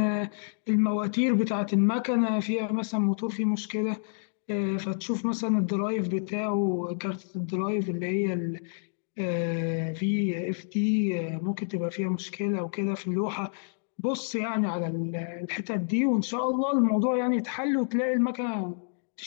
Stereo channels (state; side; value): silent; right; digital silence